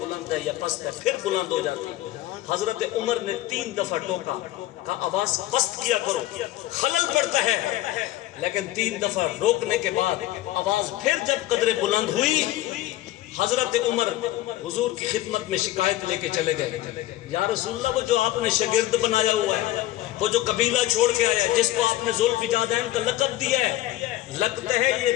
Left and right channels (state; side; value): quieter; right; 15.4 dB